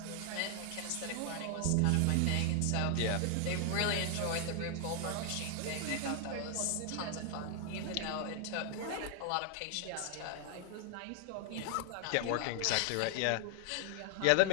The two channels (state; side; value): different; both; correlation 0.00